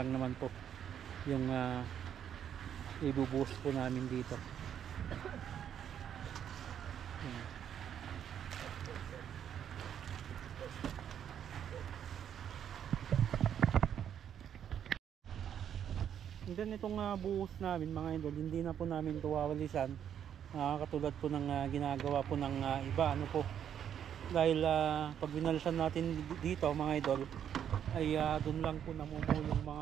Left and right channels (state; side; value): quieter; left; 9.1 dB